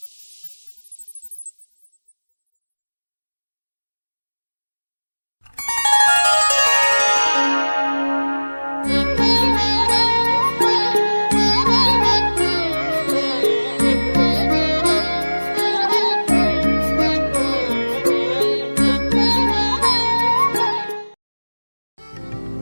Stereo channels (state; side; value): inverted; both; correlation -1.00